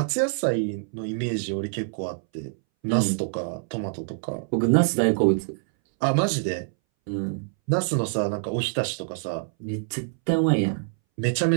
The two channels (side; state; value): left; silent; 61 dB below the other